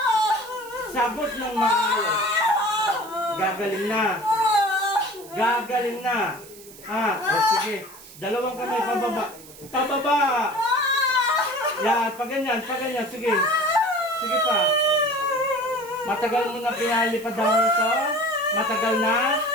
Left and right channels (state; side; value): noise; right; hiss, 19 dB below the sound